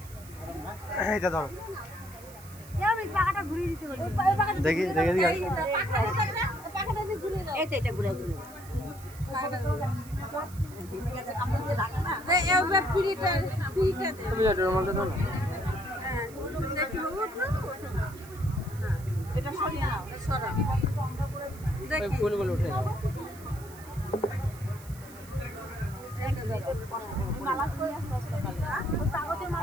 এটা ধরো দেখি দেখে দিই এটা ঘুরে ঘুরে তুমি যাও রুমালটা দাও না। এটা সরিয়ে নাও, সরা ওই ফুলগুলো উঠে যাও। মালা কই আসতে আসতে কাগজের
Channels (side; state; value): right; noise; hiss, 20 dB below the sound